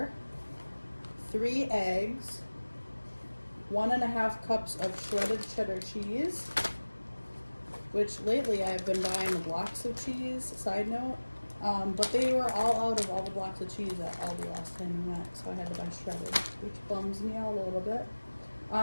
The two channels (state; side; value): inverted; both; correlation -1.00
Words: 3 eggs, 1.5 cups of shredded cheddar cheese, which lately I've been buying the blocks of cheese, side note, but they were all out of all the blocks of cheese at Aldi last time we went, so I had to buy shredded, which bums me out a little bit.